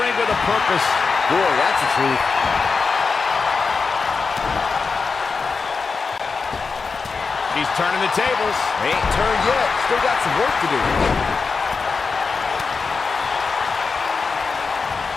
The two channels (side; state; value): right; quieter; 4.8 dB